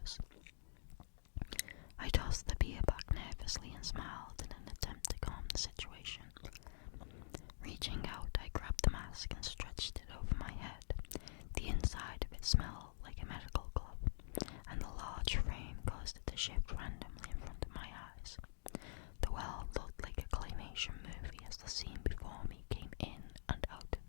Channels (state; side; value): silent; right; digital silence